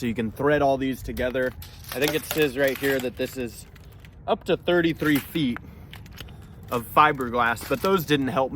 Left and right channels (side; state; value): both; identical; correlation 1.00